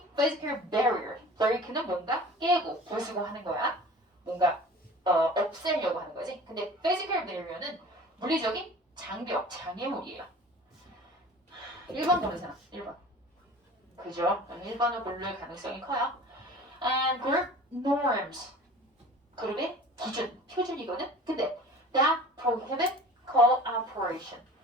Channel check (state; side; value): normal; both; correlation 0.42